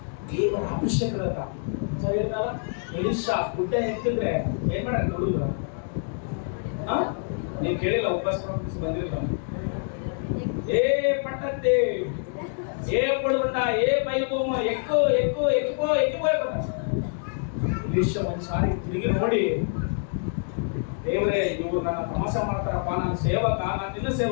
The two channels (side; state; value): right; silent; 61 dB below the other